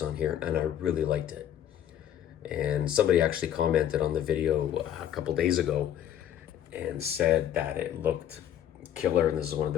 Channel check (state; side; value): quieter; right; 10.5 dB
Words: on here, and I really liked it. And somebody actually commented on the video a couple days ago and said that it looked killer, and this is one of